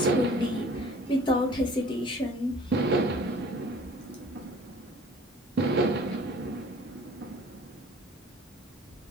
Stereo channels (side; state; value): both; normal; correlation 0.50